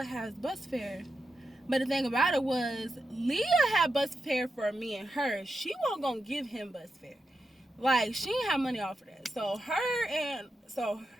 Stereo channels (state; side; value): normal; both; correlation 0.87